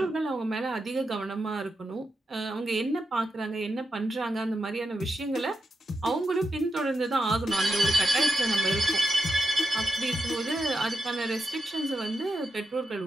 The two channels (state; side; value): normal; both; correlation 0.87